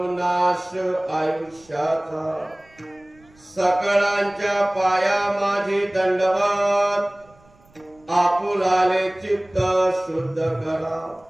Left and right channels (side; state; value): right; noise; rumble, 29 dB below the sound